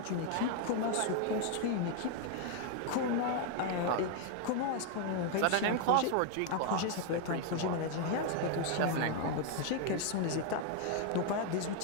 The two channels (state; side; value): different; both; correlation 0.00